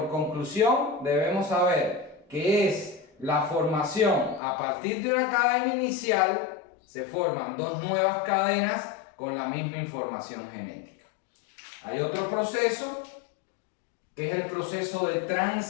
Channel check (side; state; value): right; drops out; at 4.4 s